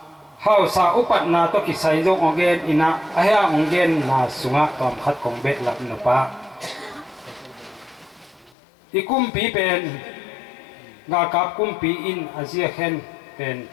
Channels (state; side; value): drops out; right; at 8.6 s